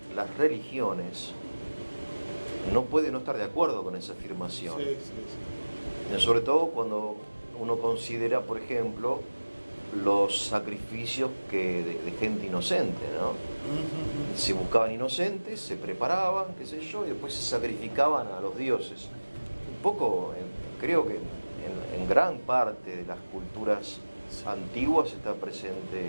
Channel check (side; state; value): both; inverted; correlation -1.00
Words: las religiones, no puede no estar de acuerdo con esa afirmación. Sí, sí, sí. Sobre todo cuando uno considera, por ejemplo, los sacrificios de gente inocente, ¿no? Se buscaban inocentes, se preparaban, qué sé yo, y después se sacrificaban a los dioses. Un poco, creo que en gran parte de las culturas antiguas está